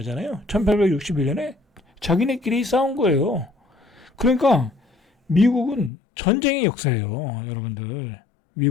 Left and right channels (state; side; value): drops out; right; at 5.9 s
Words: 1861년에 자기네끼리 싸운 거예요. 그러니까 미국은 전쟁의 역사예요, 여러분들.